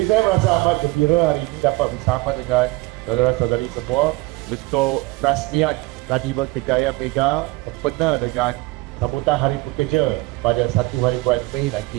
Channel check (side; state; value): left; quieter; 21.9 dB